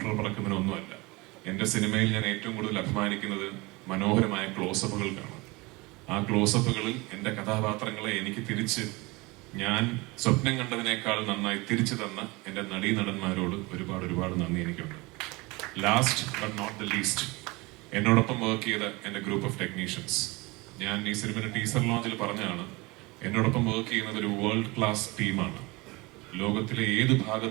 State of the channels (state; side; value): quieter; left; 24.3 dB